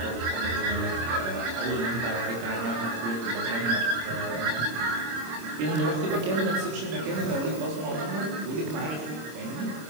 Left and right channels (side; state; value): left; late; 26 ms